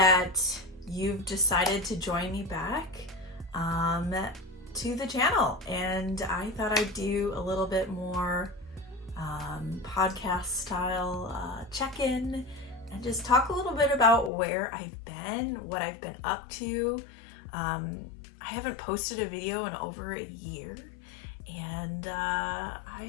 you've decided to join me back to the channel. And I thought I'd do a little bit more podcast style check-in and just talk a little bit about where I've been, what I've been up to. I haven't posted a video in over a year, and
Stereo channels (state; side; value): drops out; right; at 14.3 s